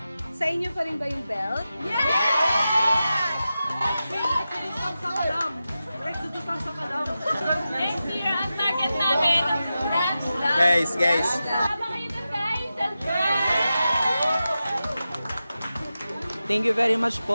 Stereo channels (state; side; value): inverted; both; correlation -0.92